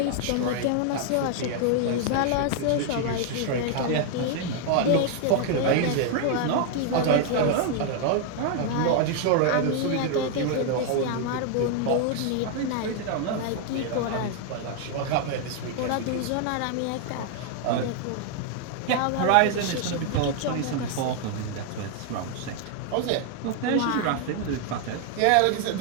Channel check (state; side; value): different; both; correlation 0.00